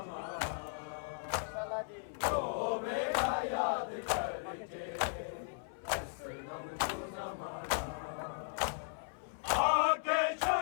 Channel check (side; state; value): right; silent; 53 dB below the other